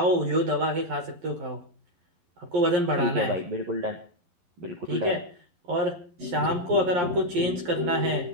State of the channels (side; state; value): left; late; 11 ms